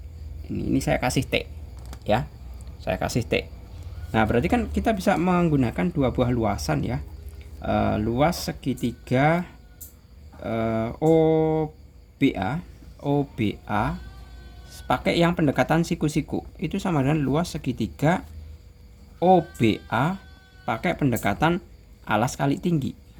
Ini saya kasih T ya. Saya kasih T. Nah berarti kan kita bisa menggunakan dua buah luasan ya. Luas segitiga OBA pakai yang pendekatan siku-siku itu sama dengan luas segitiga OBA pakai pendekatan alas kali tinggi.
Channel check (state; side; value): identical; both; correlation 1.00